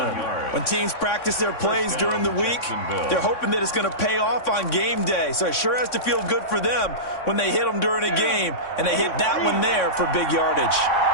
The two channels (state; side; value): late; right; 3.6 ms